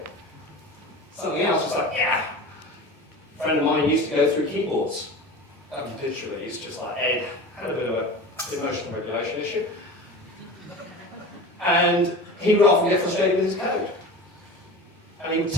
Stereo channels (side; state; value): both; normal; correlation 0.33